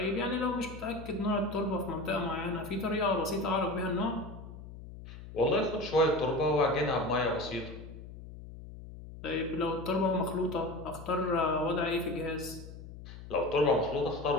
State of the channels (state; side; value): noise; left; hum, 14 dB below the sound